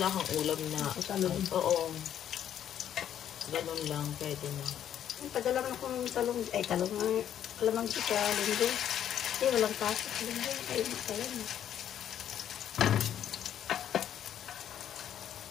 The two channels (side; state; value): right; quieter; 10.2 dB